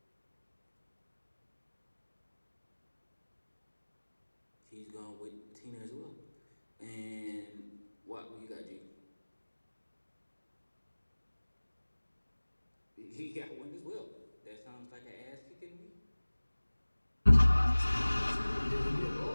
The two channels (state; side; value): inverted; both; correlation -1.00